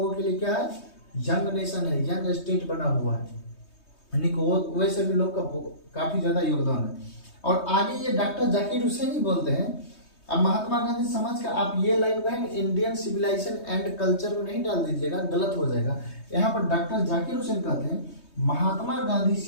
के लिए क्या है? यंग नेशन है, यंग स्टेट बना हुआ है, यानी कि वैसे भी लोग का काफी ज्यादा योगदान है। और आगे ये डॉक्टर जाकिर हुसैन ही बोलते हैं। अब महात्मा गांधी समझ कर आप ये लाइन को है इंडियन सिविलाइजेशन एंड कल्चर में नहीं डाल दीजिएगा, गलत हो जाएगा। यहाँ पर डॉक्टर जाकिर हुसैन कहते हैं महात्मा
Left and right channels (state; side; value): late; right; 3.2 ms